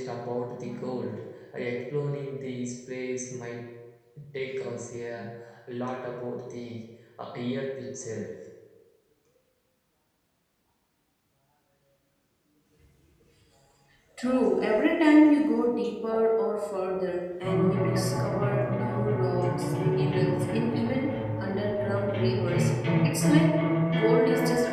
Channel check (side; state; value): both; identical; correlation 1.00